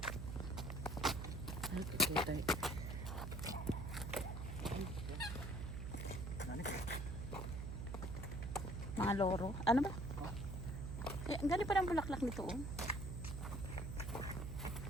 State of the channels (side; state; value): right; noise; hum, 4 dB below the sound